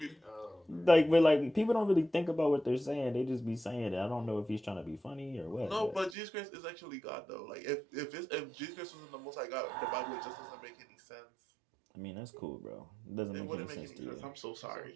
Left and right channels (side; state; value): left; drops out; at 6.2 s